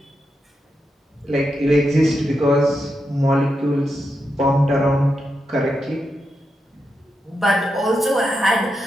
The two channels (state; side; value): normal; both; correlation 0.86